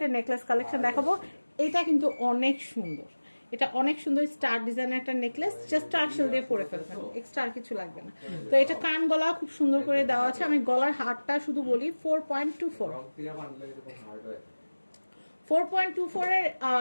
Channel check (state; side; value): inverted; both; correlation -1.00